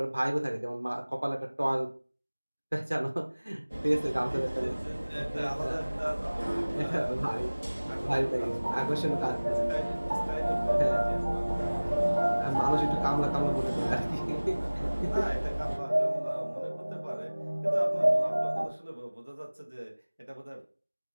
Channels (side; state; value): both; inverted; correlation -1.00